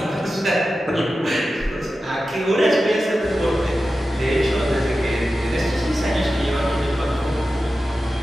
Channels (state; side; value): normal; both; correlation 0.93